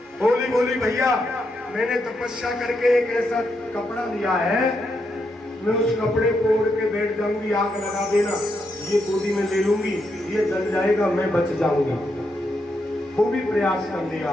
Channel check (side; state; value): both; normal; correlation 0.81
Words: होली बोली, भैया मैंने तपस्या करके एक ऐसा कपड़ा लिया है, मैं उस कपड़े को ओढ़ के बैठ जाऊंगी, आग लगा देना, ये गोदी में ले लूंगी, ये जल जाएगा, मैं बच जाऊंगा। वो भी प्रयास कर लिया।